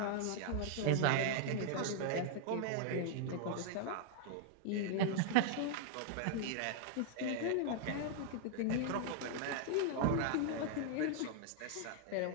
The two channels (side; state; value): both; different; correlation -0.01